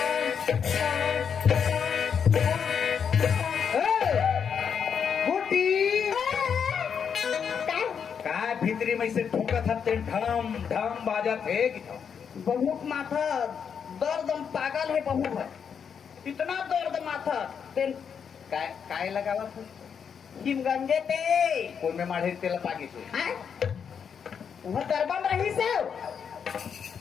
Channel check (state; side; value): quieter; right; 7.1 dB